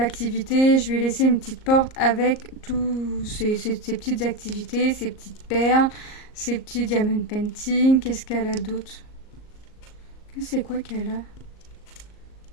je lui ai laissé une petite porte avec tous ces petites activités, ces petites perles, ces petits diamond painting. Qu'est-ce qu'elle a d'autre? C'est quoi qu'elle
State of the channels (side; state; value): right; late; 38 ms